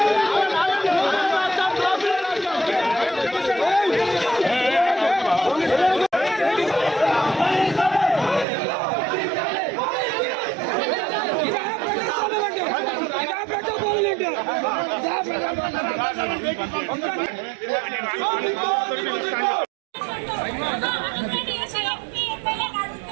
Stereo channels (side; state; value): left; drops out; at 8.5 s